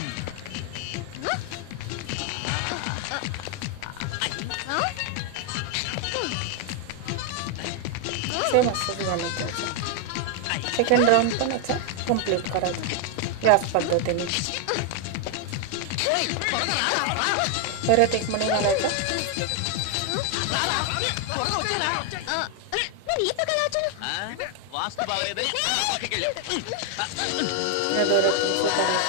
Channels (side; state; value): both; different; correlation 0.00